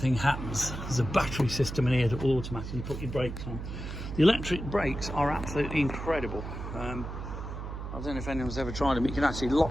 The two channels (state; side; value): noise; right; hum, 7 dB below the sound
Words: happens, there's a battery system in here that will automatically put your brakes on. The electric brakes are absolutely incredible. I don't know if anyone's ever tried them. You can actually